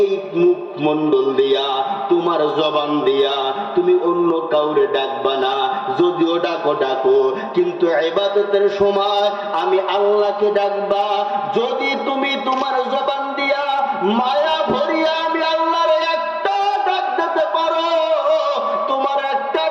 মুখমণ্ডল দিয়া, তোমার জবান দিয়া তুমি অন্য কাউরে ডাকবা না। যদিও ডাকো ডাকো, কিন্তু ইবাদতের সময় আমি আল্লাহকে ডাকবা। যদি তুমি তোমার জবান দিয়া মায়া ভরিয়া আমি আল্লাহর একটা ডাক দিতে পারো, তোমার একটা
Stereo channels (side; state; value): both; identical; correlation 1.00